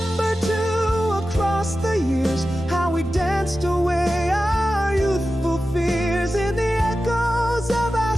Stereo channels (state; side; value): normal; both; correlation 0.93